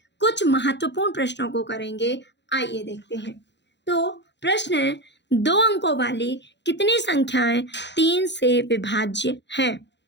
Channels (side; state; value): right; late; 0.51 ms